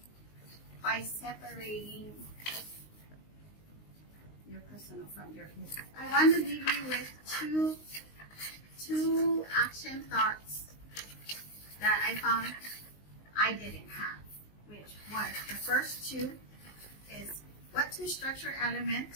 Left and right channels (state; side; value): late; right; 19 ms